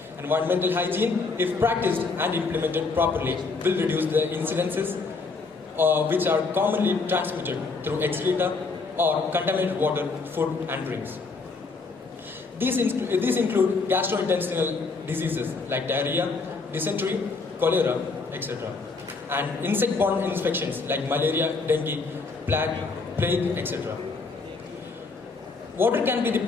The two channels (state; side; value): quieter; right; 4.2 dB